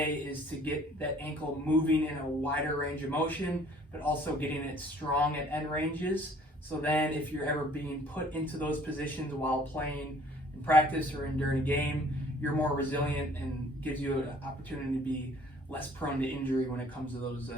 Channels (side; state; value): both; normal; correlation 0.56